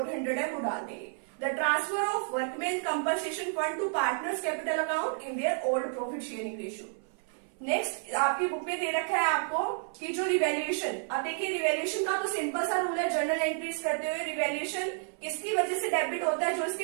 है वो डाल देंगे। The transfer of workman compensation fund to partners capital account in their old profit sharing ratio. Next आपकी बुक में दे रखा है आपको कि जो रिवैल्यूएशन, अब देखिए रिवैल्यूएशन का तो सिंपल सा रूल है जर्नल एंट्रीज करते हुए। रिवैल्यूएशन किसकी वजह से डेबिट होता है, जो इसकी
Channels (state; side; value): silent; left; 57 dB below the other